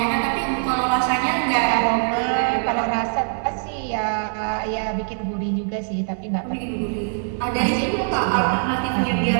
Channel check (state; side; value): silent; left; 64 dB below the other